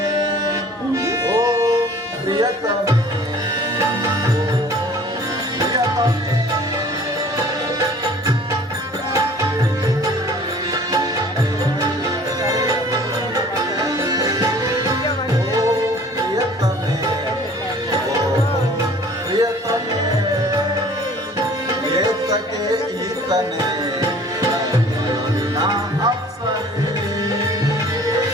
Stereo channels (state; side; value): normal; both; correlation 0.50